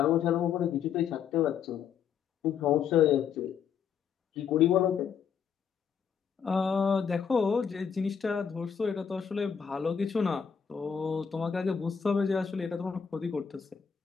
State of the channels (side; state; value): right; quieter; 7.2 dB